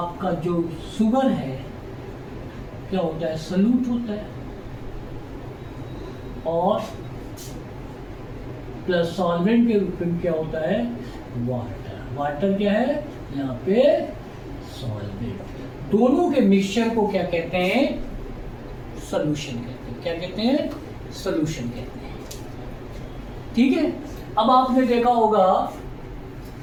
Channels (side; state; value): both; identical; correlation 1.00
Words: जो शुगर है क्या होता है? सॉल्यूट होता है, और प्लस सॉल्वेंट के रूप में क्या होता है? वाटर। वाटर क्या है यहाँ पे? सॉल्वेंट। दोनों के मिक्सचर को क्या कहते हैं? सॉल्यूशन कहते हैं। क्या कहते हैं? सॉल्यूशन कहते हैं। ठीक है, अब आपने देखा होगा